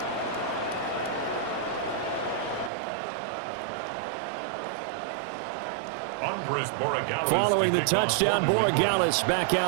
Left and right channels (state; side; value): drops out; left; at 2.7 s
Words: Following the touchdown, Borregales back